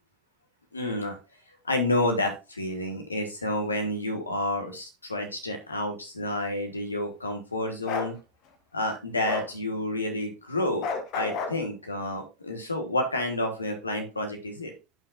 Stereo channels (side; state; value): both; inverted; correlation -0.44